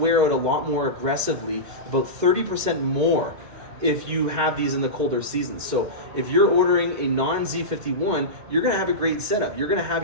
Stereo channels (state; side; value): late; left; 2.1 ms